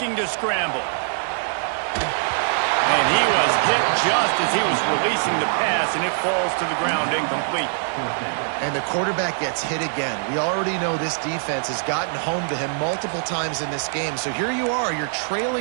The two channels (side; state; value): left; silent; digital silence